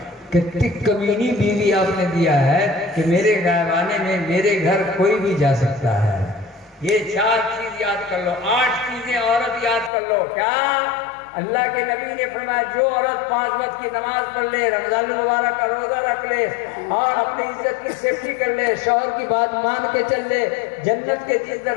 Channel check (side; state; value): right; drops out; at 9.9 s